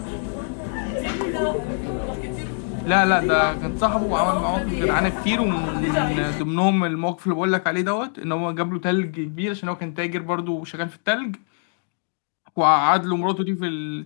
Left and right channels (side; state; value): right; silent; 63 dB below the other